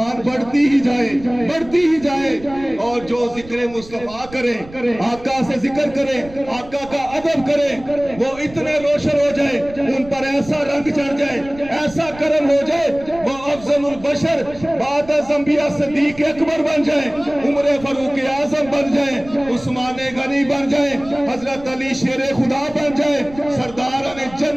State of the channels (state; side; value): noise; right; rumble, 19 dB below the sound